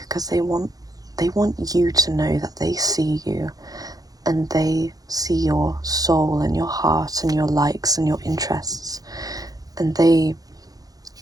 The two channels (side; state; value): left; late; 0.18 ms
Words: because they want you to know that they see you and they see your soul and your heart and your likes and your interests, and they